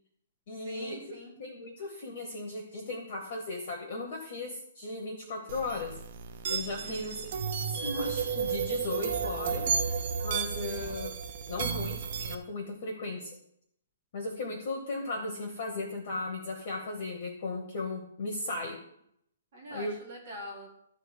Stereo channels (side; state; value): both; inverted; correlation -0.56